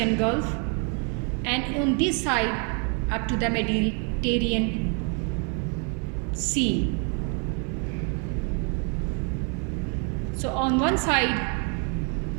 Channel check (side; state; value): left; quieter; 38.6 dB